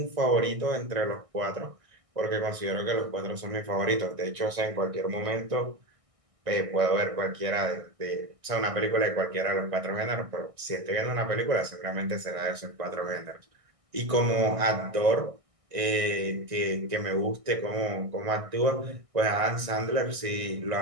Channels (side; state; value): left; late; 1.6 ms